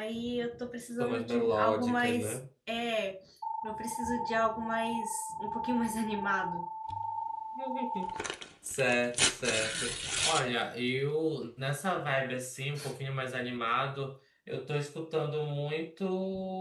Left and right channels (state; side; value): identical; both; correlation 1.00